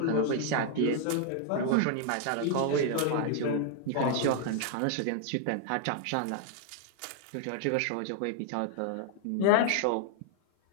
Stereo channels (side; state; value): both; different; correlation 0.00